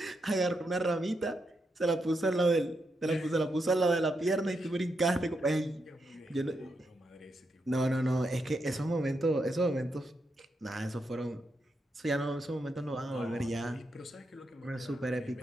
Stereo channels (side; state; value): both; normal; correlation 0.83